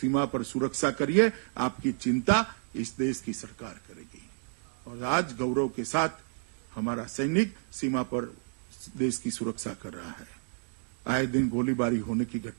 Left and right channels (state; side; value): silent; left; 57 dB below the other